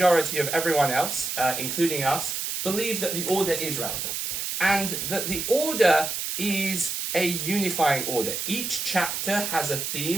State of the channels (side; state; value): right; noise; hiss, 3 dB below the sound